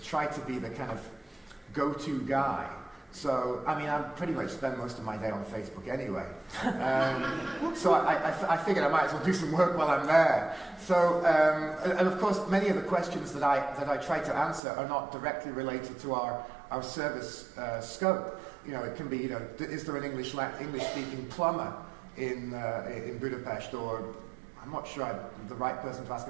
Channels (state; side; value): drops out; left; at 14.6 s